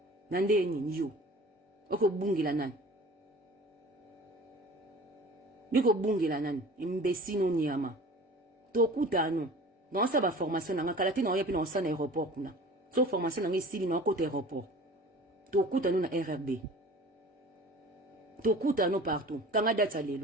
na ndeni yo ko bungela nani yo ko bungela nani imbesino nyama to kutano dans sa formation na kalati na yapi na osana aéroport kuna so formation na ngisili na côté aéroport to kuta na RRB to kuta no partout kanga data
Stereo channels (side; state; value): both; normal; correlation 0.42